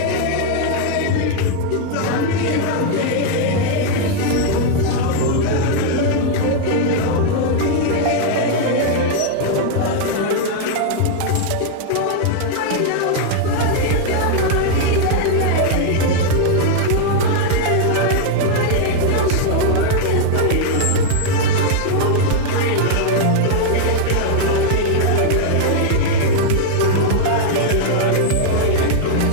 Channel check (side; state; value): both; different; correlation 0.00